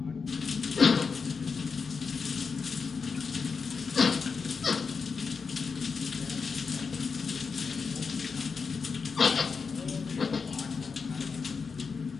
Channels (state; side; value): quieter; right; 5.2 dB